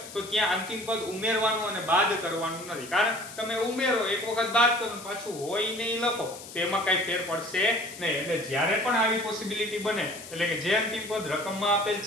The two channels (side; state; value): left; noise; hiss, 14 dB below the sound